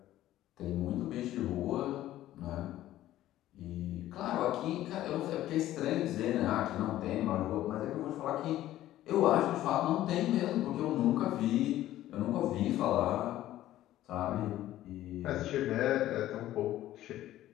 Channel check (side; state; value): right; quieter; 14.0 dB